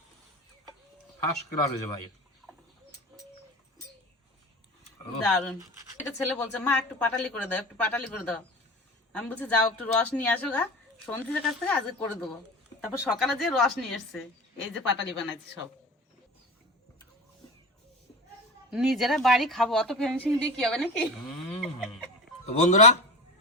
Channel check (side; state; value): both; normal; correlation 0.31